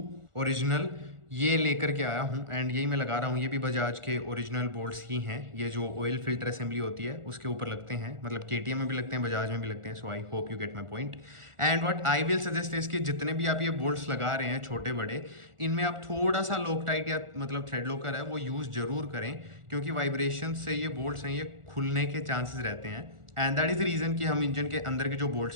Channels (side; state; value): left; late; 1.4 ms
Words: ओरिजिनल ये लेकर के आया हूँ एंड यही मैं लगा रहा हूँ। ये भी बजाज के ओरिजिनल बोल्ट्स ही हैं, ये जो ऑयल फिल्टर असेंबली होती है उसके ऊपर लगते हैं, मतलब केटीएम में भी लगते हैं, बजाज में भी लगते हैं। So I hope you get my point. And what I will suggest is कि जितने भी आप ये बोल्ट्स लगा रहे हैं छोटे बड़े, इनमें आप थोड़ा सा लॉकटाइट या मतलब थ्रेड लॉकर है वो यूज़ जरूर करें, क्योंकि वाइब्रेशन से ये बोल्ट्स हैं ये खुलने के चांसेस रहते हैं। And that is the reason कि हम इंजन के अंदर के जो